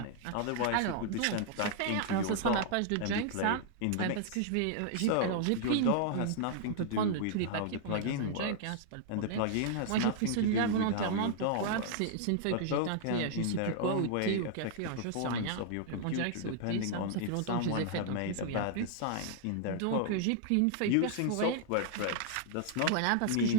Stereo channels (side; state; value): both; different; correlation -0.01